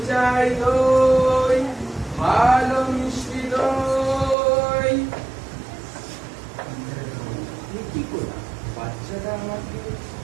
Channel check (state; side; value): drops out; left; at 4.4 s